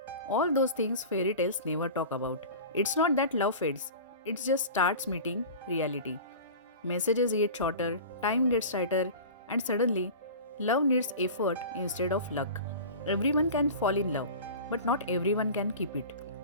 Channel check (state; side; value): inverted; both; correlation -0.35